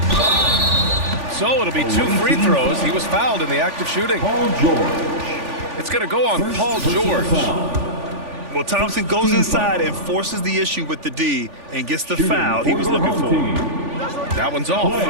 So it'll be 2 free throws. He was fouled in the act of shooting. Paul George. It's going to go on First Paul personal George. foul. Well, Thompson goes inside and forces the issue with the D and gets the Shooting foul he was the looking home for. team, That one's off.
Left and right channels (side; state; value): left; late; 3.4 ms